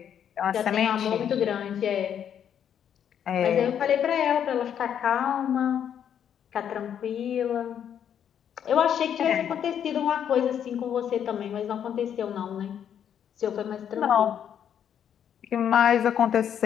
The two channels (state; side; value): quieter; right; 9.0 dB